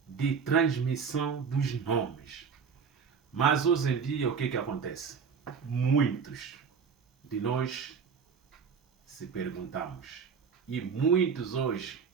de transmissão dos nomes. Mas hoje em dia o que acontece? Muitos de nós se perguntamos, e muitos hoje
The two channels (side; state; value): left; quieter; 6.1 dB